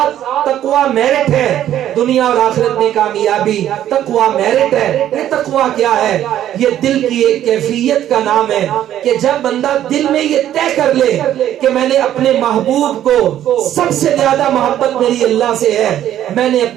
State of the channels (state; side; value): quieter; left; 11.6 dB